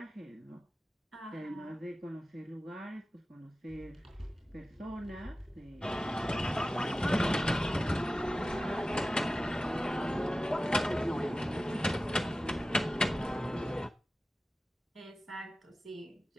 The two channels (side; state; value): both; normal; correlation 0.95